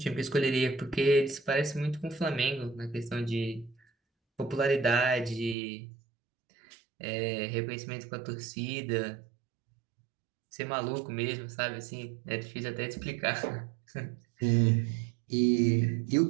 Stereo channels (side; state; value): left; drops out; at 5.6 s